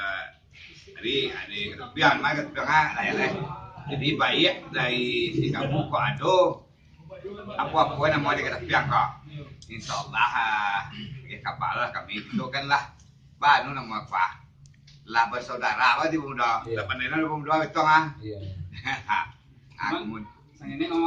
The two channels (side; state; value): both; identical; correlation 1.00